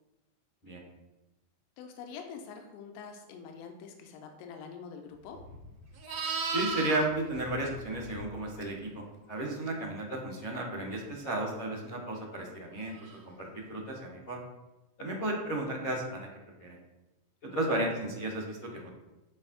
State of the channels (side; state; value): right; late; 17 ms